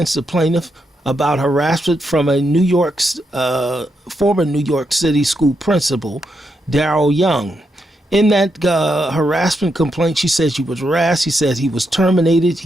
the plaintiff about harassment from a former New York City school principal, Daryl Young. In that harassment complaint, she said she was harassed. He said he was terminated.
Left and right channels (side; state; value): both; normal; correlation 0.82